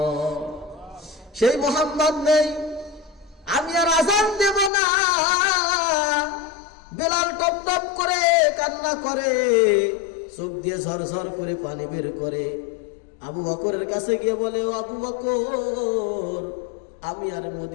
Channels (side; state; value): right; drops out; at 4.7 s